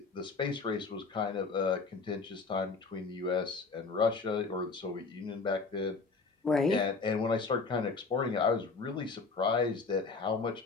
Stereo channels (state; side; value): quieter; right; 4.4 dB